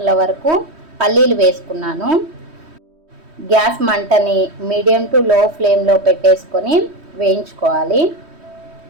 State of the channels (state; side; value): late; left; 3.1 ms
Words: వరకు పల్లీలు వేసుకున్నాను. గ్యాస్ మంటని మీడియం టు లో ఫ్లేమ్లో పెట్టేసుకొని వేయించుకోవాలి.